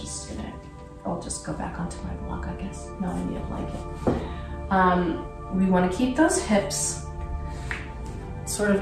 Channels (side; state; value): both; identical; correlation 1.00